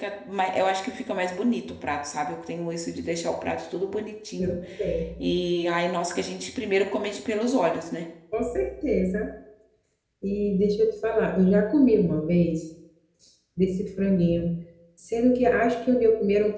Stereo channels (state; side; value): identical; both; correlation 1.00